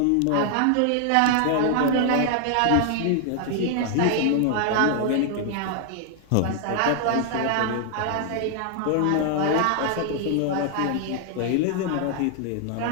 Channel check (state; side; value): different; both; correlation 0.00